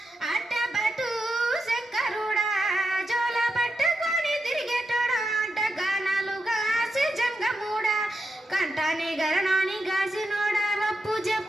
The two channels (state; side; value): normal; both; correlation 0.85